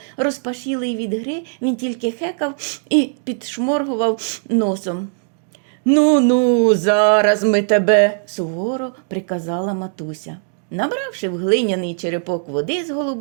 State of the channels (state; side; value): silent; left; digital silence